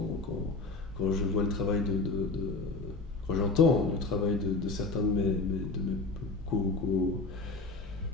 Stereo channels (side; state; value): right; quieter; 3.6 dB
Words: quand je vois le travail quand j'entends le travail de certains de mes